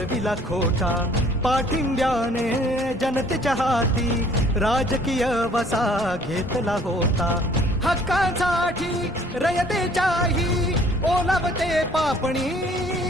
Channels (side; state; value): both; normal; correlation 0.57